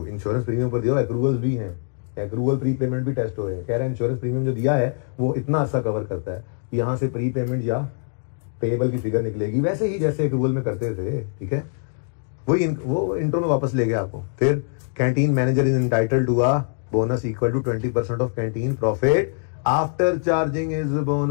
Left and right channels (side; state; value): right; silent; digital silence